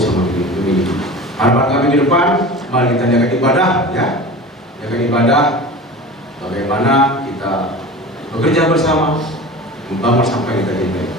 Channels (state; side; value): normal; both; correlation 0.35